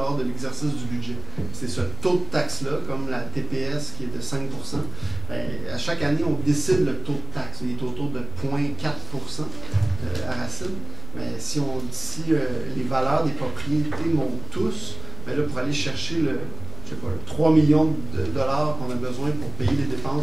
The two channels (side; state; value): right; noise; rumble, 16 dB below the sound